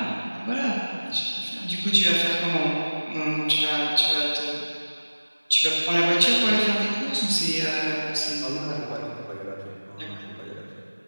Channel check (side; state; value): both; inverted; correlation -1.00